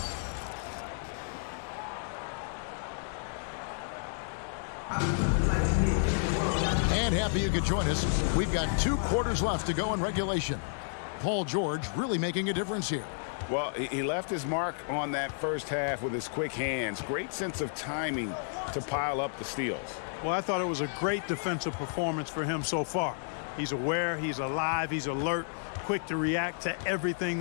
Happy you could join us. We've got 2 quarters left to go in regulation. Paul George really making a difference here. Well, he left his mark on that first half with his quick hands. Great sense of timing to pile up the steals. Well, I thought it was a great defensive performance for him so far. He's aware, he's alive, he's alert, quick to react to everything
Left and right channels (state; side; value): silent; right; digital silence